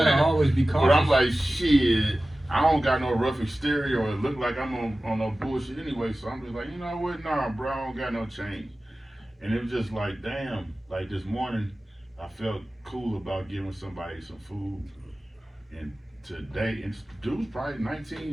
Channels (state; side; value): normal; both; correlation 0.96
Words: saying? always be cautious. But I'm like, shit. I don't got no rough exterior or it look like I'm on no bullshit anyway. So I'm just like, you know what? Nah, bro, I don't got no change. And it was just like, damn. Like this morning, I felt cool about giving somebody some food. And today, and dude's probably